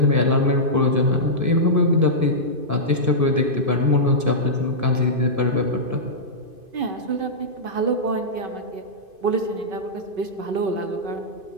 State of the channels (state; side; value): late; left; 2.5 ms